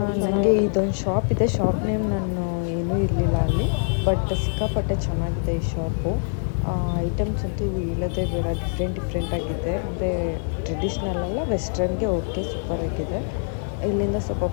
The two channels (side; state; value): right; silent; 62 dB below the other